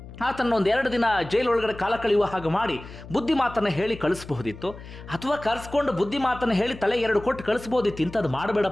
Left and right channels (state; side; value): noise; left; hum, 15 dB below the sound